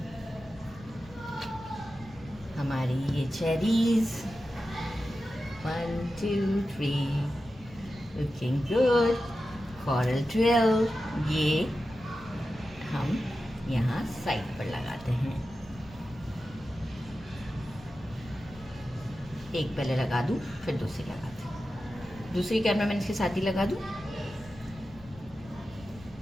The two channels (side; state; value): left; noise; rumble, 20 dB below the sound